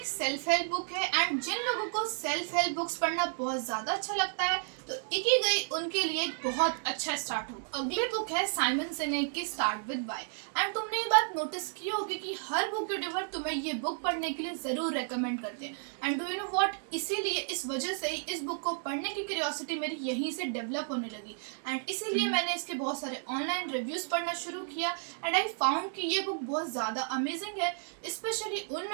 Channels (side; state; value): left; silent; digital silence